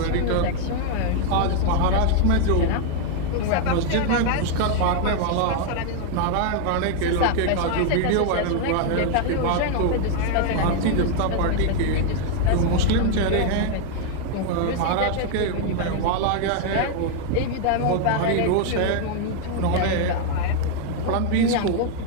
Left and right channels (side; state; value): both; different; correlation 0.00